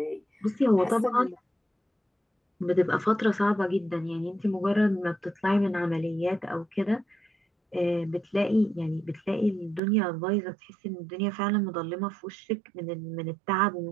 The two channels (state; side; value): drops out; left; at 9.8 s